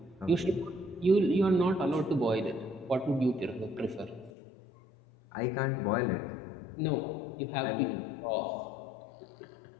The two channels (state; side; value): drops out; right; at 4.3 s